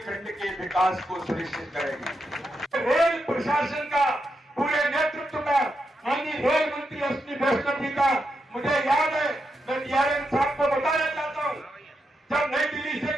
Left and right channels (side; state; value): both; normal; correlation 0.85